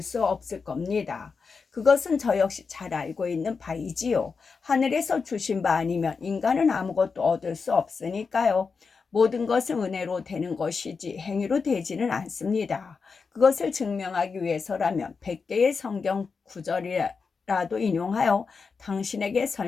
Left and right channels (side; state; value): right; quieter; 5.1 dB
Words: 수 없을 겁니다. 그것은 저 역시 잘 알고 있는 바이지요. 하늘에서 주신 바 아니면 인간은 아무것도 얻을 수 없으니까요. 모든 것은 은혜로 되는 것이지 행위로 되지는 않습니다. 그것을 증명하기 위해서라면 100개의 성경 구절이라도 인용하여 당신에게